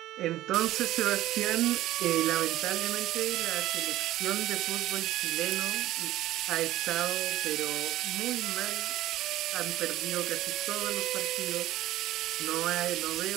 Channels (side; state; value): left; quieter; 14.9 dB